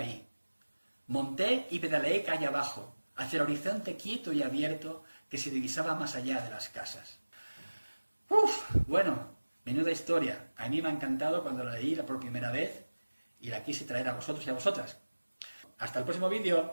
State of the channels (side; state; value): both; inverted; correlation -1.00